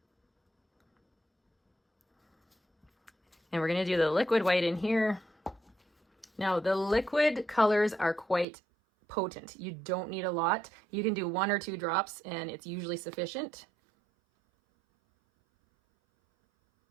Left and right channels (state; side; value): drops out; left; at 8.5 s